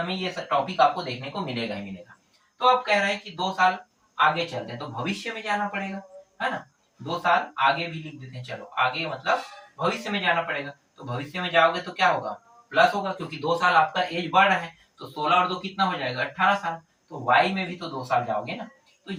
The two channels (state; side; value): identical; both; correlation 1.00